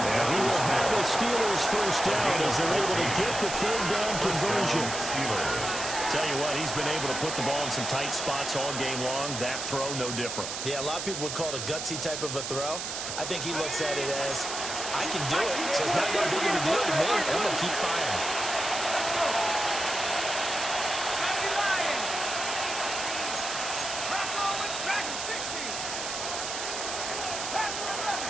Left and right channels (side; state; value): right; noise; hiss, 5 dB below the sound